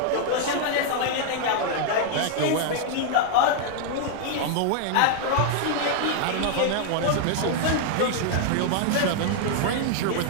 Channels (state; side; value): different; both; correlation 0.00